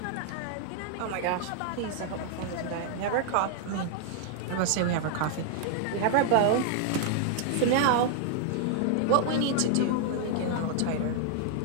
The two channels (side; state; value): both; different; correlation 0.00